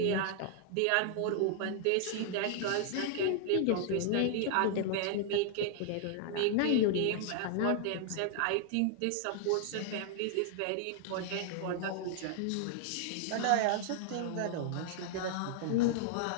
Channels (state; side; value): different; both; correlation 0.00